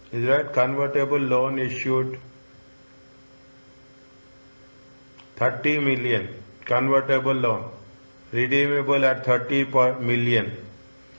Is right? Convertible loan issued 30 million. Convertible loan. Redeemable at 30 per million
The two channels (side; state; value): both; inverted; correlation -1.00